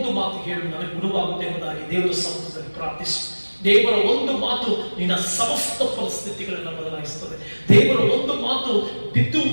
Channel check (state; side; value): inverted; both; correlation -1.00